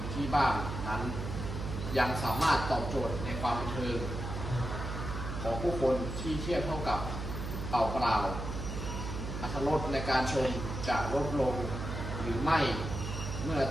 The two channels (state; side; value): noise; right; hum, 5 dB below the sound